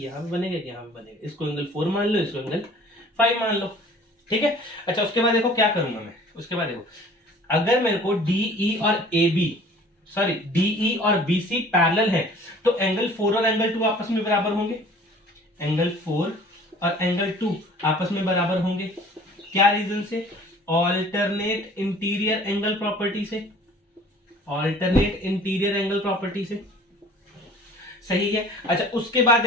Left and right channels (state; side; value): normal; both; correlation 0.49